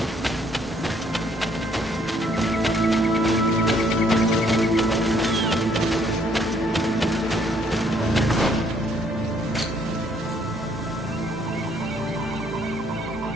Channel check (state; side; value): normal; both; correlation 0.66